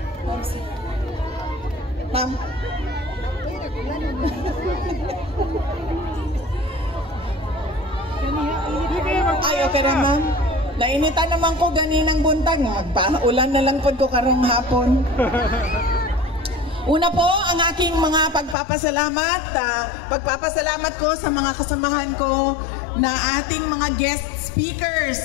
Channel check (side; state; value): right; drops out; at 18.6 s